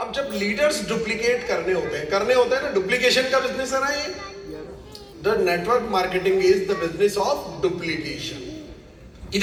अब जब लीडर्स डुप्लीकेट करने होते हैं ना, डुप्लीकेशन का बिजनेस है ना ये. The network marketing is the business of duplication.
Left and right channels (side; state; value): both; identical; correlation 1.00